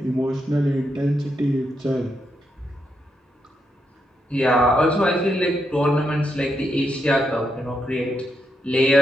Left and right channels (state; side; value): normal; both; correlation 0.82